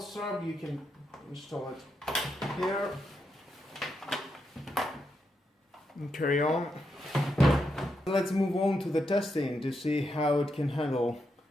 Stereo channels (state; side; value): normal; both; correlation 0.83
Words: strap, you can install it here and carry on. Let's move on to the testing to see how it can handle